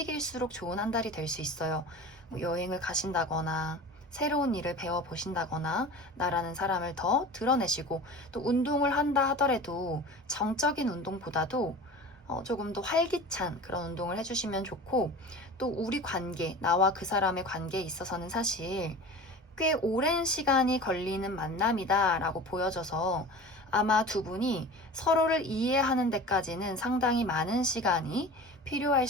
좋은 한 달이 될 수 있어요. 뭐 여행을 가신다거나 새로운 일을 배워보신다거나 나라는 사람을 더 드러내시고, 또 운동을 한다 하더라도 정적인 운동보다도 조금 더 활기찬 그런 운동을 해주시면 좋고, 또 우리 관계, 나와 그 사람의 관계에 있어서는 사실 꽤 오랜 시간이 걸리는 만남이다 라고 보여져서 아마 두 분이 서로를 이해하는 데까지는 상당히 많은 시간이 필요할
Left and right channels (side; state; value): both; normal; correlation 0.36